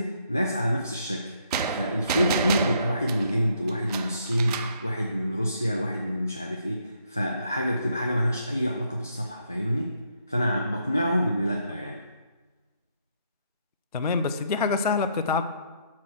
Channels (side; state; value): both; inverted; correlation -0.72